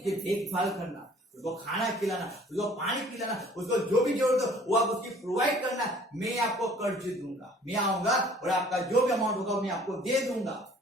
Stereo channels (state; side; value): normal; both; correlation 0.54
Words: देखभाल करना, उसको खाना खिलाना, उसको पानी पिलाना, उसको जो भी जरूरत हो वो आप उसकी प्रोवाइड करना। मैं आपको कर्ज दूंगा, मैं आऊंगा और आपका जो भी अमाउंट होगा मैं आपको दे दूंगा।